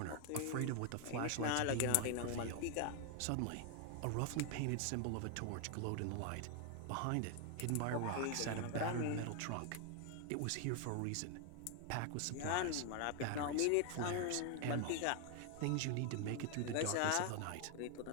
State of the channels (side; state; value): both; different; correlation 0.01